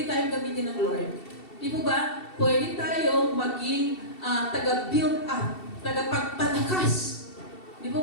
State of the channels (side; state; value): right; late; 2.7 ms